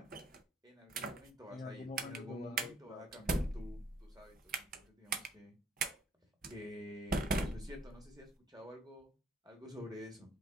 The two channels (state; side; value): normal; both; correlation 0.66